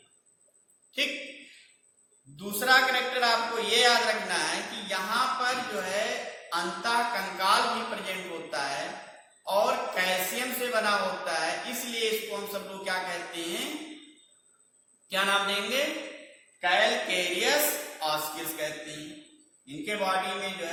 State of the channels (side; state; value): both; identical; correlation 1.00